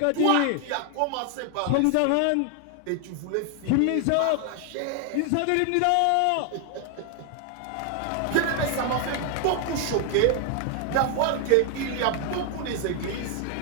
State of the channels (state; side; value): different; both; correlation 0.00